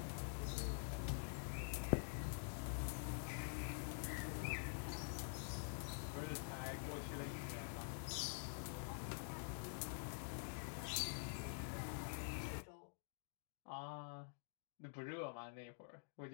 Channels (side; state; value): right; silent; digital silence